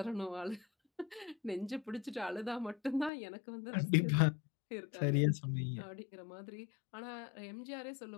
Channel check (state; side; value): drops out; right; at 3.1 s